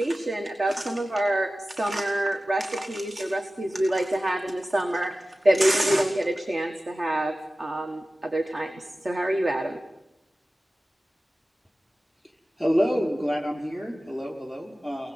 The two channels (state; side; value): normal; both; correlation 0.96